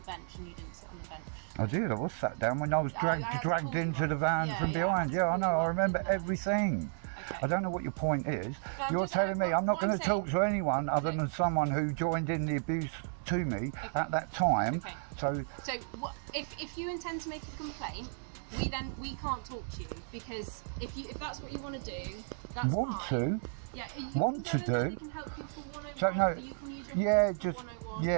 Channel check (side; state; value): left; silent; 56 dB below the other